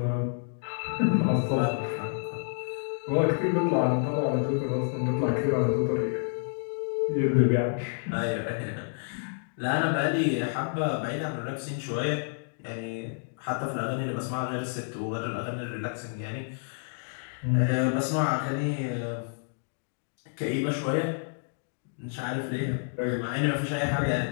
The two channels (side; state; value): right; silent; digital silence